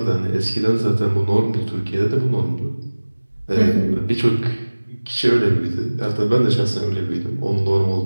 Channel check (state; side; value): inverted; both; correlation -1.00